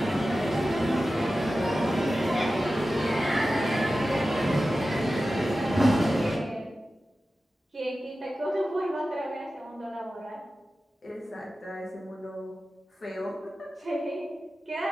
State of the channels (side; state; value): both; normal; correlation 0.94